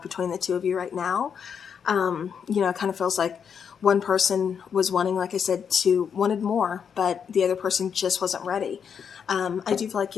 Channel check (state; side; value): quieter; right; 7.2 dB